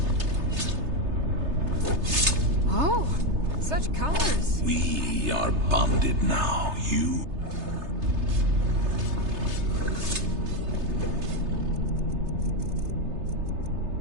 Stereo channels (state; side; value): late; left; 3.3 ms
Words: Oh, such colors. We are bonded now, you.